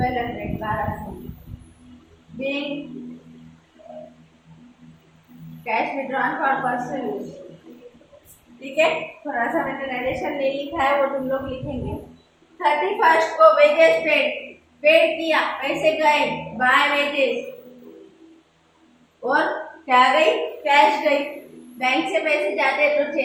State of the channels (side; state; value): both; identical; correlation 1.00